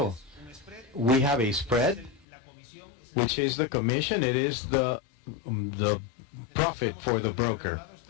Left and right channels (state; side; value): drops out; right; at 2.2 s